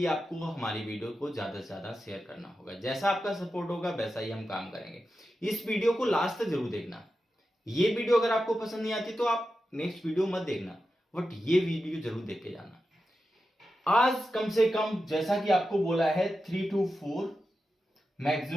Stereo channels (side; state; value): both; normal; correlation 0.91